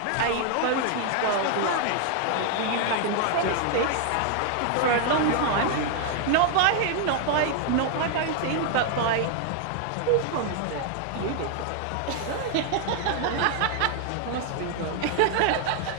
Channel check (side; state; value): both; different; correlation 0.00